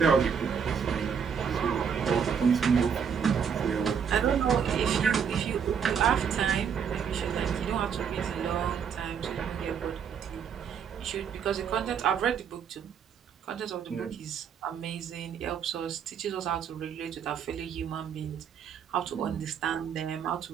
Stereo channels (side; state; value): left; quieter; 7.2 dB